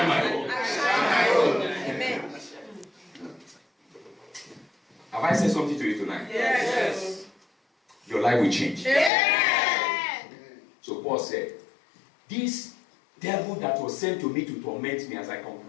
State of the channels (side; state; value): right; drops out; at 9.1 s